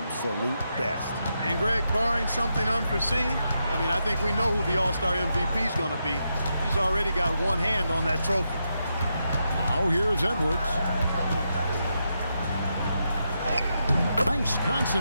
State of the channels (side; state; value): both; inverted; correlation -0.84